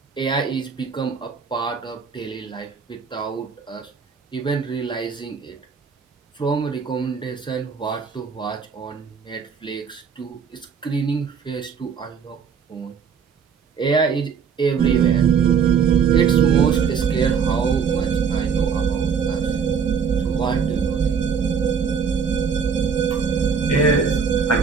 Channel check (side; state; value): left; quieter; 6.4 dB